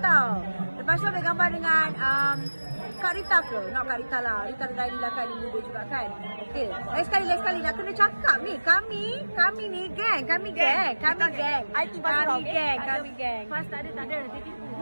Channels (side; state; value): both; inverted; correlation -1.00